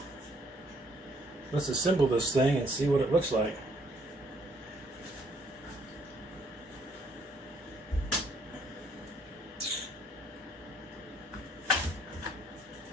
assemble this thing and see what it looks like.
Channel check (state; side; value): normal; both; correlation 0.66